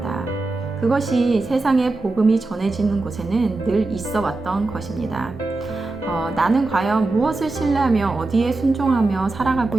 그것이 세상에 복음이 전해지는 곳에는 늘 있어 왔던 것입니다. 나는 과연 무엇을 신뢰하며 어디에 순종하며 살아가고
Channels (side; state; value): left; quieter; 3.2 dB